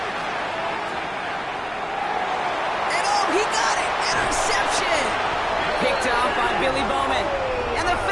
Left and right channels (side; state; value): both; identical; correlation 1.00